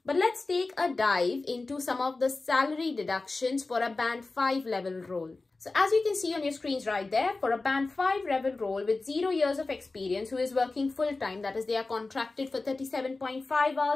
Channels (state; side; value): quieter; right; 3.5 dB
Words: But let's take a dive into some of the salary deductions for a band 5 level role. So as you can see on your screens right there, for a band 5 level role with 0 years of experience who is working full-time, that is they are contracted for 37.5